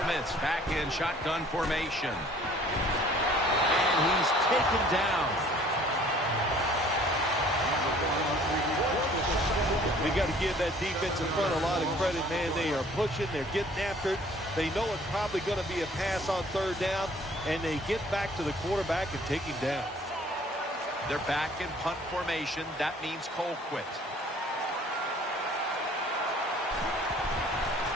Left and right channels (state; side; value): normal; both; correlation 0.54